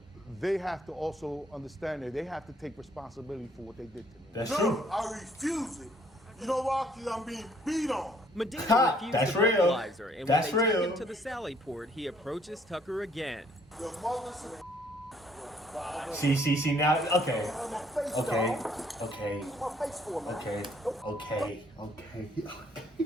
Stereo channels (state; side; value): normal; both; correlation 0.63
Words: they have to also understand that they have to take responsibility for what they did to me. That's No, true. I refuse it. You know why? Because I'm being beat on. Medina Ha, refused that's the real. breathalyzer, and That's when they real. take him to the Sally Port, he approaches Tucker again. Your mother's See, now, okay. my face, Okay, dog. okay, Use my face for me. okay.